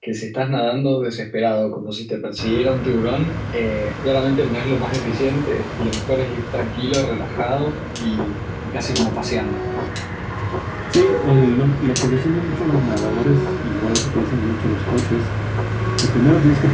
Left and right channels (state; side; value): identical; both; correlation 1.00